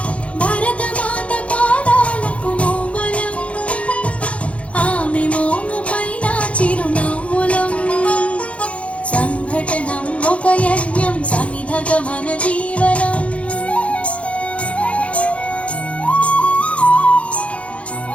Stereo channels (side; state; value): right; late; 0.063 ms